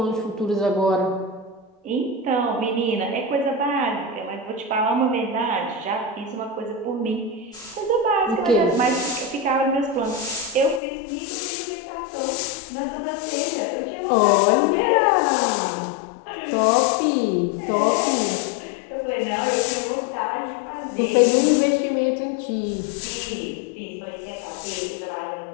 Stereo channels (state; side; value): drops out; right; at 10.8 s